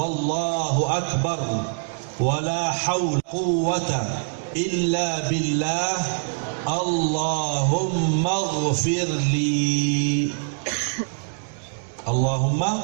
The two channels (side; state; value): left; silent; 63 dB below the other